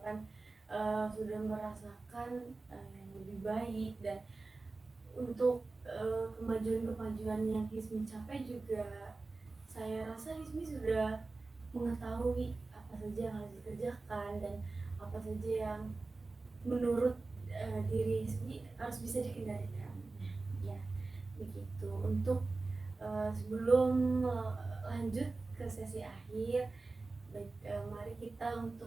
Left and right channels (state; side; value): quieter; left; 3.6 dB